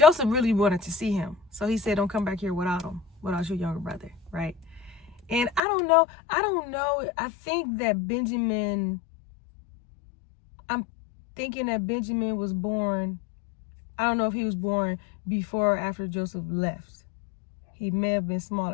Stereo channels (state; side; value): drops out; right; at 5.6 s